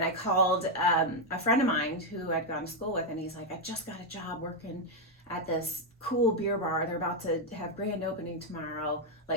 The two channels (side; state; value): both; normal; correlation 0.02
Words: I called a friend of mine who I'd gone to school with, and he's like, I just got a job working at this cool beer bar. They're about to have grand opening tomorrow.